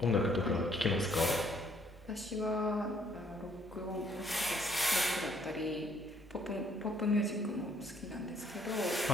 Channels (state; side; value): normal; both; correlation 0.66